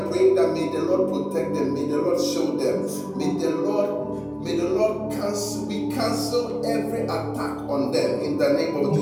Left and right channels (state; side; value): identical; both; correlation 1.00